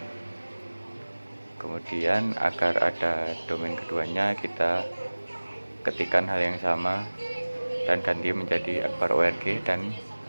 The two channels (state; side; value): inverted; both; correlation -1.00